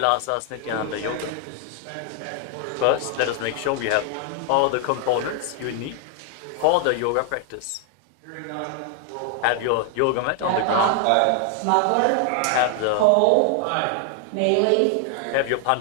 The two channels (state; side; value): different; both; correlation 0.00